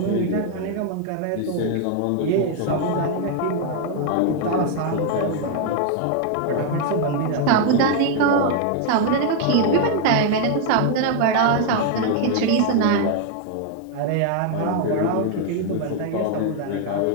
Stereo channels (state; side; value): different; both; correlation 0.00